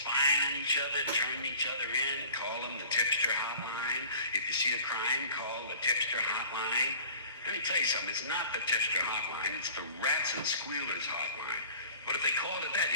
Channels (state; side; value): inverted; both; correlation -0.44